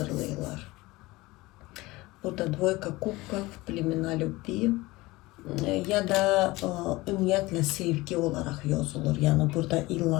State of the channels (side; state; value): right; quieter; 20.7 dB